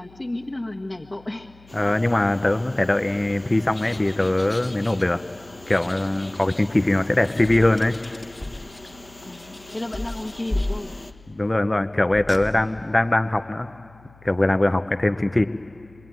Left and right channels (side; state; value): left; noise; hum, 27 dB below the sound